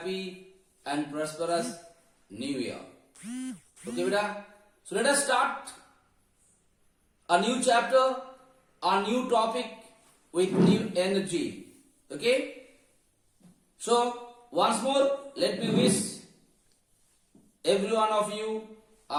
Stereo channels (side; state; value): both; identical; correlation 1.00